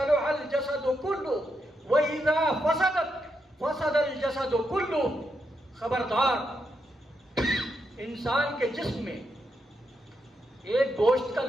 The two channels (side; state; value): both; normal; correlation 0.82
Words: الجسد كله واذا فسدت فسد الجسد كله۔ خبردار، انسان کے جسم میں ایک گوشت کا